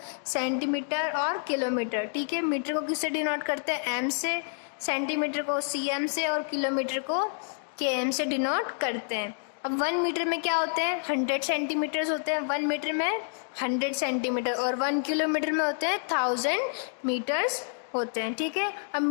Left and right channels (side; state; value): right; silent; digital silence